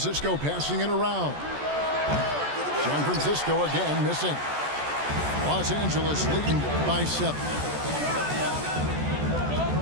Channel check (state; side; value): late; left; 14 ms